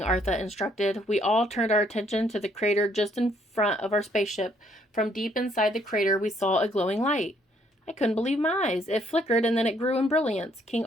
Arthur instructed. We all turned our attention to the crater just in front of our spaceship. From deep inside the crater, we saw a glowing light. I couldn't believe my eyes. It flickered and then it grew in brilliance. "King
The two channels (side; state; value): both; normal; correlation 0.68